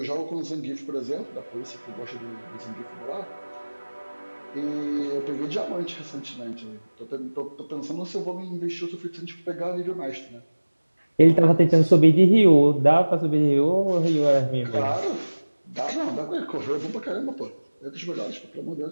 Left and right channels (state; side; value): inverted; both; correlation -1.00